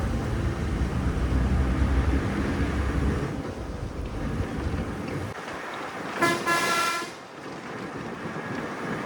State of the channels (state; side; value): identical; both; correlation 1.00